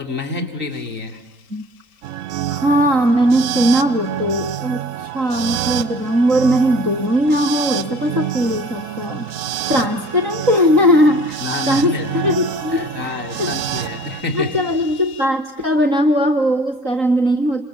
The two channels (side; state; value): left; late; 3.8 ms